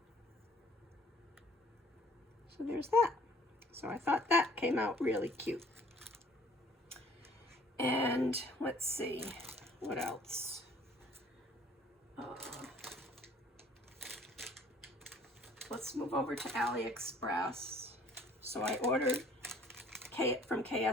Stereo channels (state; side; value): normal; both; correlation 0.56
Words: So there's that. So I thought that came out really cute. And let's see, what else? let's move over to AliExpress. So I ordered from